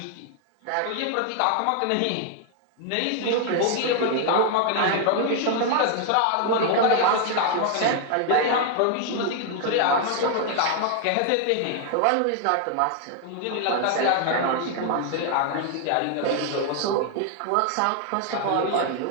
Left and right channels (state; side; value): different; both; correlation 0.00